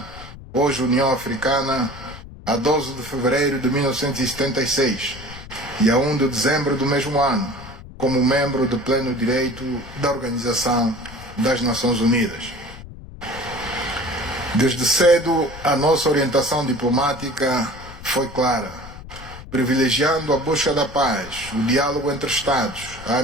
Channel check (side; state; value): left; noise; rumble, 15 dB below the sound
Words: hoje União Africana, a 12 de fevereiro de 1976 e a 1 de dezembro do mesmo ano, como membro de pleno direito da Organização das Nações Unidas. Desde cedo, a nossa orientação diplomática foi clara, privilegiando a busca da paz, o diálogo entre Estados, a